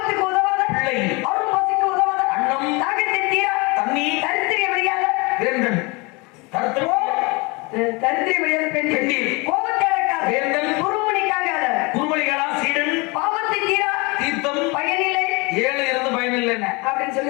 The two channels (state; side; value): quieter; right; 27.2 dB